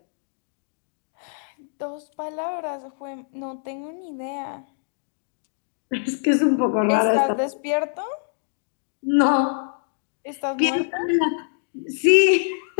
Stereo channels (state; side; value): silent; right; digital silence